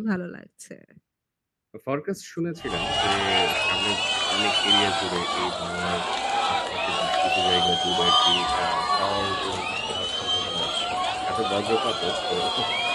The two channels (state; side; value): identical; both; correlation 1.00